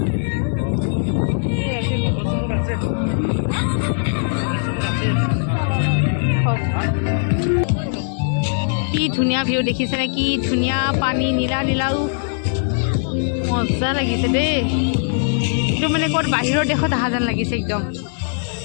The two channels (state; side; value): silent; right; 66 dB below the other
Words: কি ধুনীয়া ভিউ দেখিছেনে কি ধুনীয়া পানী নীলা নীলাও মজা লাগিছে দেই এইটো মানে ক'ত বাহিৰৰ দেশত অহা যেন লাগিছে একদম